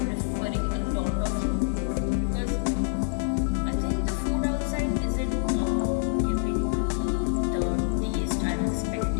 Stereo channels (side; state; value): right; silent; digital silence